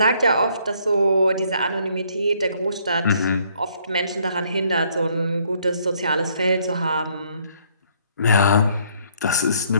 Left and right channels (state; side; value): inverted; both; correlation -0.67